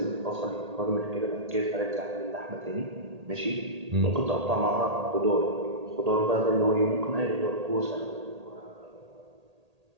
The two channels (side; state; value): left; late; 1.8 ms